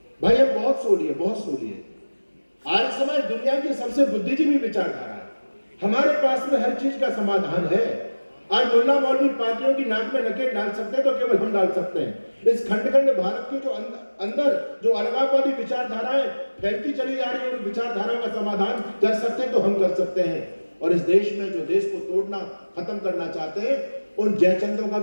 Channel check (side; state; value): both; inverted; correlation -1.00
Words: भाई हम बहुत सो लिए। आर्य समाज दुनिया की सबसे बुद्धिजीवी विचारधारा है, हमारे पास में हर चीज का समाधान है। आज मुल्ला मौलवी पार्टियों की नाक में नकेल डाल सकते हैं तो केवल हम डाल सकते हैं। इस खंड भारत के जो अंदर जो अलगाववादी विचारधाराएं फैलती चली जा रही है, उन विचारधाराओं का समाधान कर सकते हैं तो हम कर सकते हैं। और इस देश में जो देश को तोड़ना, खत्म करना चाहते हैं, उन जयचंदों का